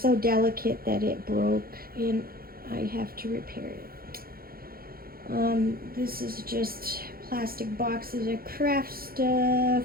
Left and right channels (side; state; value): left; late; 0.43 ms